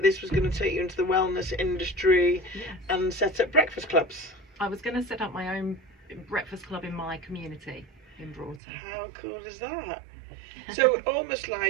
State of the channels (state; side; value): drops out; left; at 8.6 s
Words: this was going to take you into the wellness industry. Yes. And set up breakfast clubs. I was going to set up my own breakfast club in my community in Broughton. How cool is that? So almost